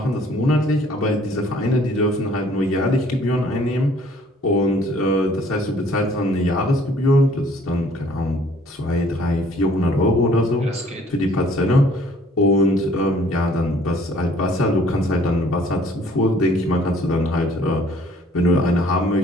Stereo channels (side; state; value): both; normal; correlation 0.57